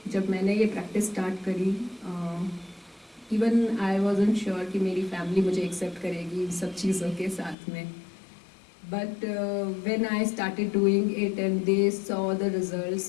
जब मैंने ये practice start करी, even I wasn't sure कि मेरी family मुझे एक्सेप्ट करेगी इन सब चीज़ों के साथ में. But when I started doing it and they saw the results,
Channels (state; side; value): drops out; right; at 7.6 s